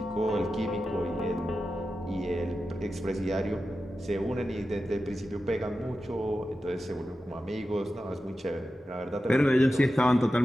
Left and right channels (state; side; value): normal; both; correlation 0.92